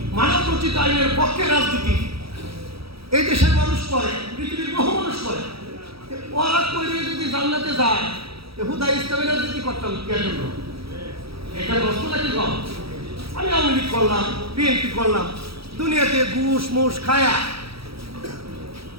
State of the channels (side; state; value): left; late; 0.76 ms